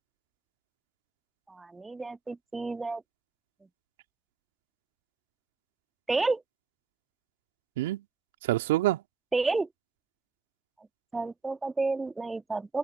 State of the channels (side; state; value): left; quieter; 5.4 dB